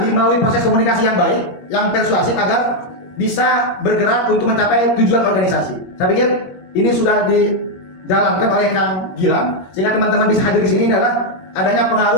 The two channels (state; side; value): late; right; 21 ms